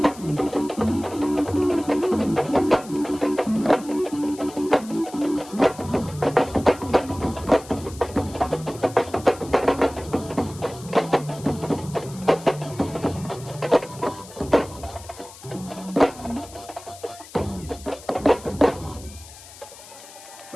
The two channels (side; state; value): left; noise; hiss, 18 dB below the sound